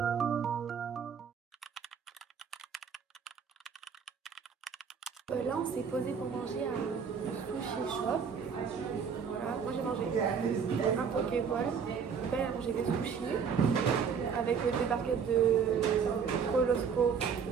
Là, on s'est posé pour manger à un sushi shop. Voilà, moi j'ai mangé un pokéball. Mon père a mangé des sushis avec des barquettes de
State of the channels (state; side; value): quieter; left; 6.5 dB